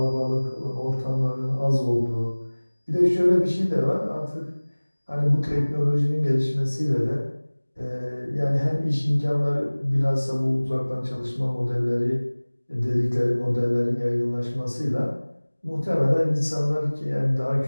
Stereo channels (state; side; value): inverted; both; correlation -1.00